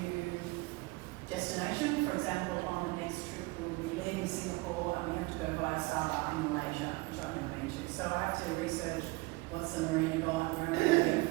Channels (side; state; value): left; quieter; 23.9 dB